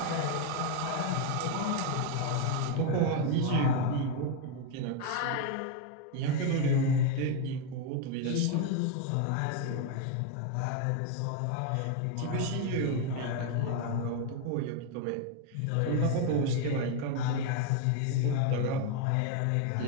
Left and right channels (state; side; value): different; both; correlation 0.01